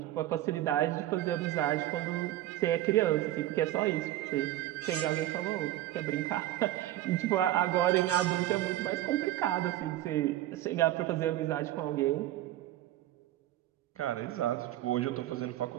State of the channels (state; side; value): quieter; left; 14.3 dB